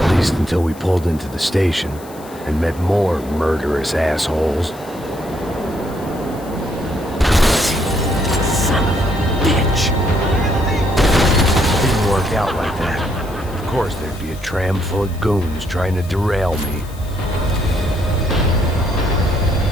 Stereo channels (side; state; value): left; noise; hiss, 21 dB below the sound